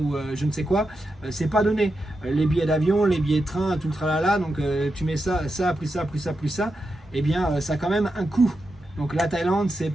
je ne sais quoi, c'est pas donné. Les billets d'avion, les billets de train, tout le tralala, donc tu mets ça, plus ça, plus ça, et bien ça a quand même un coût. Donc la Thaïlande, c'est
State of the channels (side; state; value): both; normal; correlation 0.88